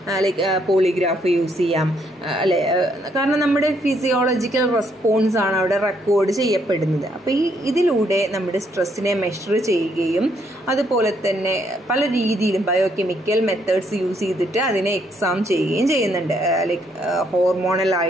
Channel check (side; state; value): both; normal; correlation 0.72